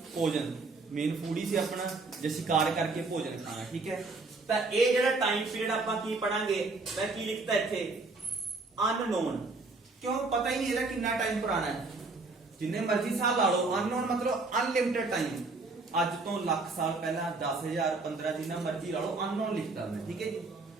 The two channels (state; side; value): quieter; left; 3.6 dB